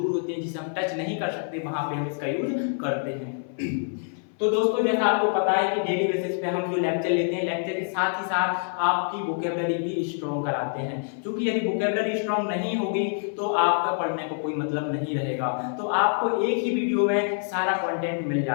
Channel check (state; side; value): silent; right; 57 dB below the other